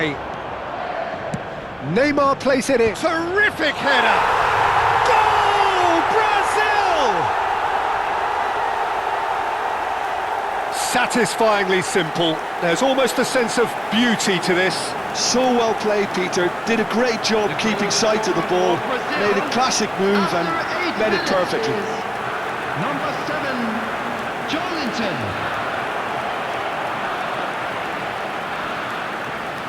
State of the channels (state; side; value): identical; both; correlation 1.00